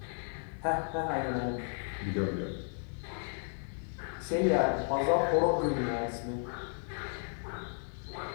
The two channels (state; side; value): silent; right; 55 dB below the other